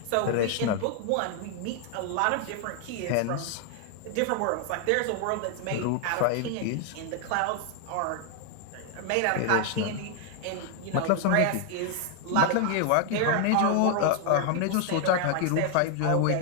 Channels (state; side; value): different; both; correlation 0.00